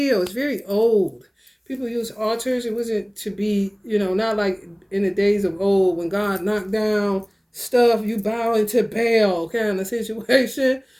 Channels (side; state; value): both; identical; correlation 1.00